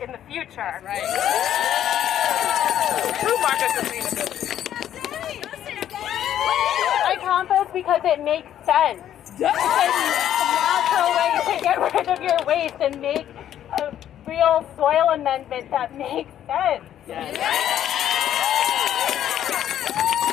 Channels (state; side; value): quieter; right; 10.9 dB